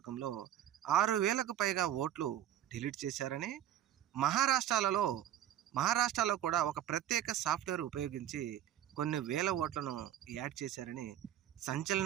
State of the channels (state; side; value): quieter; left; 11.5 dB